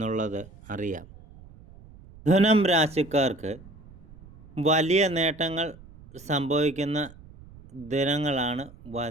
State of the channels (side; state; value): right; noise; rumble, 21 dB below the sound